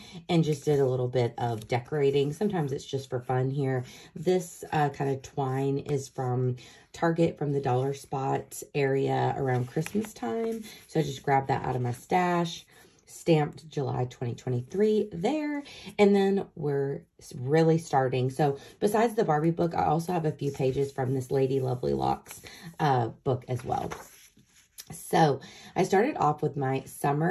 and just did a little bit of decorating. Sometimes it's just for fun here. This kind of twine is from Target, from the Dollar Spot area around Christmas time. So I just grabbed that out of my stash, stamped July 2023 there, and then we're really starting. So besides the Barbie book, I also have a few pages from this Lady Lovely Locks book as well. So I started off with my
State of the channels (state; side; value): identical; both; correlation 1.00